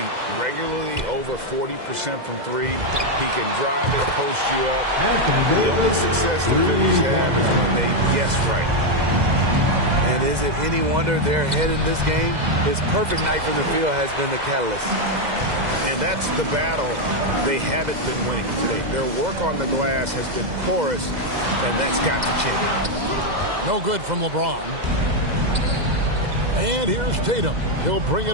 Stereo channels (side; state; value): left; late; 2.0 ms